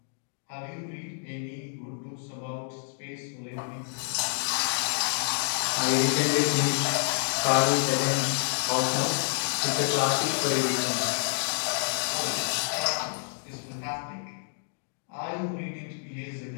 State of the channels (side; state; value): right; silent; digital silence